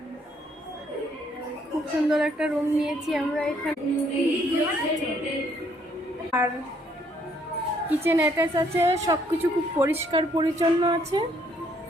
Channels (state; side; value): normal; both; correlation 0.67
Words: খুব সুন্দর একটা রুম নিয়েছি আমরা এখানে, আর কিচেন অ্যাটাচ আছে, সব কিছু খুব পরিষ্কার পরিচ্ছন্ন আছে।